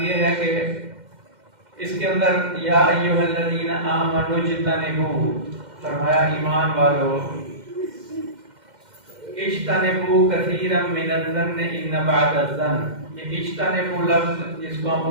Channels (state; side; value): late; left; 2.1 ms